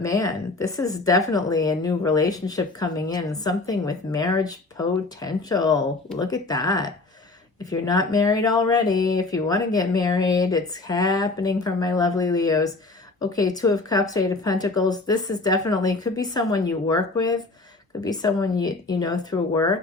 man, this is definitely a new relationship coming in. Something with marriage potential. Look at that. If you're not married already, if you want to get married, it's happening from my lovely Leos. Okay, 2 of Cups, 8 of Pentacles. This is definitely, could be someone you work with. Could be someone you know through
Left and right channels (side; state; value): right; quieter; 3.4 dB